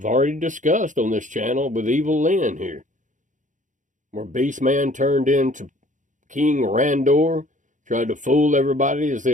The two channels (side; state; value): left; late; 0.37 ms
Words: already discussed on this channel with Evil Lynn here. where Beastman turned into King Randor, tried to fool everybody as